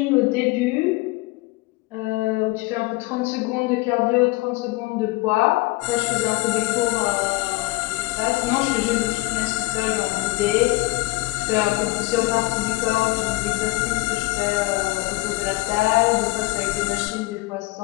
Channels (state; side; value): quieter; right; 21.1 dB